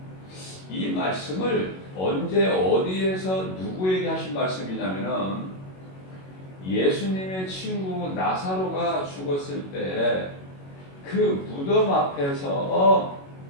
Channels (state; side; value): late; right; 21 ms